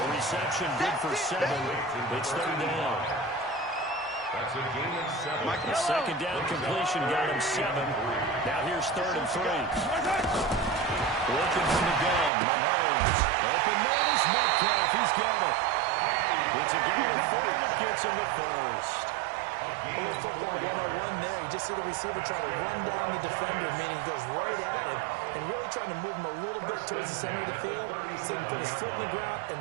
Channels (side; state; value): left; drops out; at 12.3 s